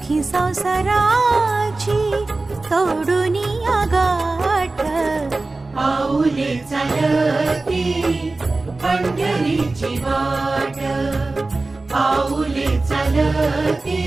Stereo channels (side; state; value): left; quieter; 3.3 dB